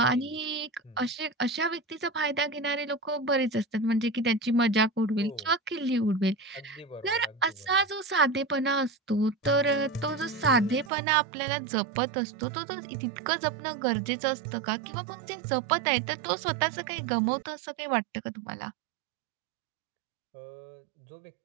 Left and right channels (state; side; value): drops out; left; at 10.9 s